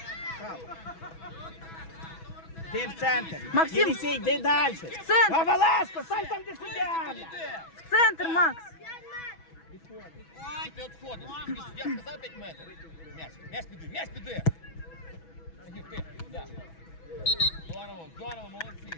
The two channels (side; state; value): right; late; 6.1 ms